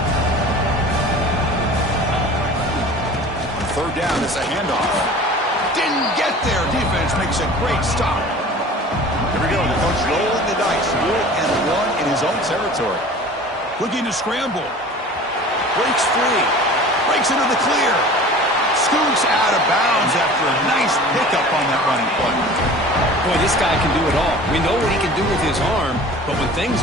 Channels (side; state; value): both; normal; correlation 0.42